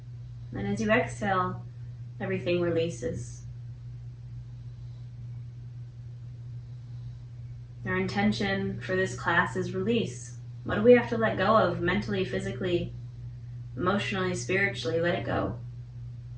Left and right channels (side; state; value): both; identical; correlation 1.00